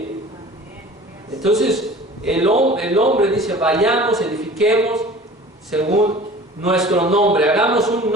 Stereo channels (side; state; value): both; normal; correlation 0.43